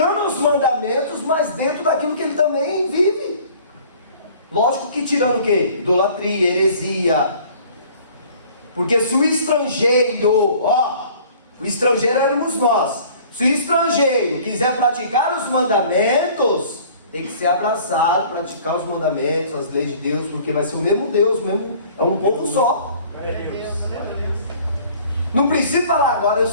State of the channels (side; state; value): both; inverted; correlation -0.51